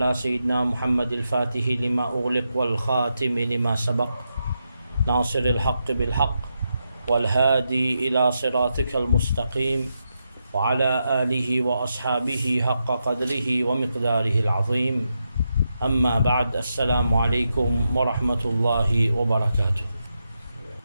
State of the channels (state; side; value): inverted; both; correlation -0.85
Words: سيدنا محمد الفاتح لما أغلق والخاتم لما سبق ناصر الحق بالحق والهادي إلى صراطك المستقيم وعلى آله وأصحابه حق قدره ومقداره العظيم أما بعد السلام عليكم ورحمة الله وبركاته.